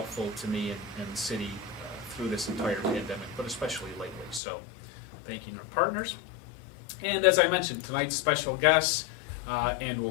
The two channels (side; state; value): right; drops out; at 4.4 s